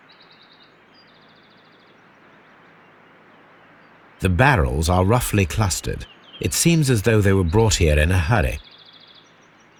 The barrels are roughly clustered. It seems as though they were brought here in a hurry.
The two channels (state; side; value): identical; both; correlation 1.00